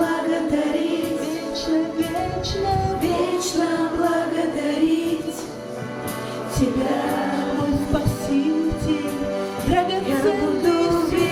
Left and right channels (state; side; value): identical; both; correlation 1.00